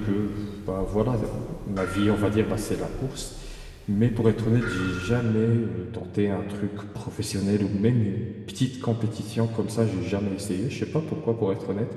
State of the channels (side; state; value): both; identical; correlation 1.00